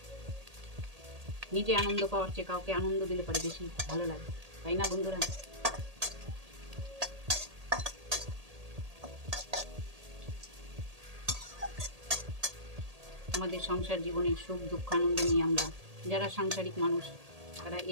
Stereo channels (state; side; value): late; left; 1.8 ms